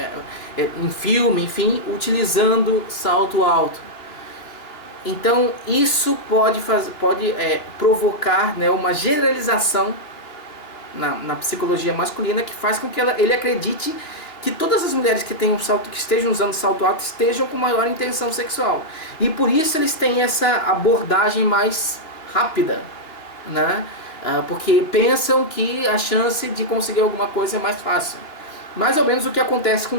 em filme, enfim, utilizando salto alto. Então isso pode provocar, né, uma generalização na psicologia masculina, que faz com que ele acredite que todas as mulheres que estejam usando salto alto estejam com maior intenção sexual. E por isso eles têm essa abordagem mais rápida, né? Porque pensam que a chance de conseguir alguma coisa é mais fácil. Mais ou menos o que acontece com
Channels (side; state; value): right; late; 3.0 ms